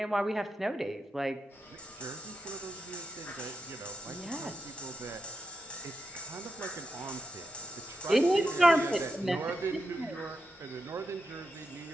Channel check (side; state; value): both; normal; correlation 0.87